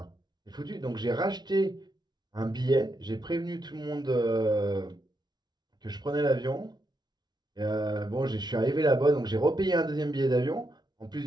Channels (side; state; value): left; late; 0.20 ms